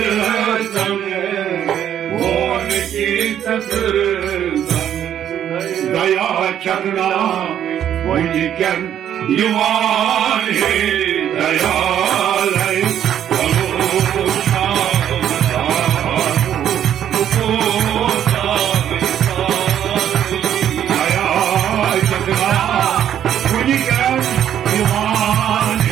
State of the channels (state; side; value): quieter; left; 10.2 dB